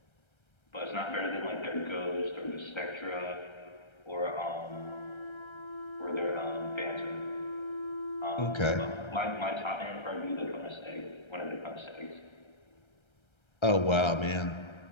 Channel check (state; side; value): late; right; 1.3 ms